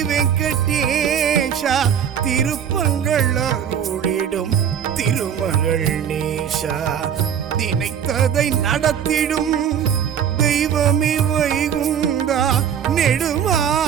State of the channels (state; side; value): quieter; left; 8.5 dB